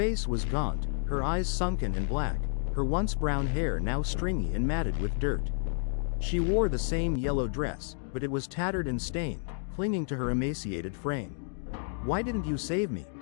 was gaunt, her eyes sunken and black, her once brown hair now stringy and matted with dirt. She wore the same yellow dress, but it was tattered and stained, clinging to her emaciated frame. "Why didn't you save me?"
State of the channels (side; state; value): right; silent; digital silence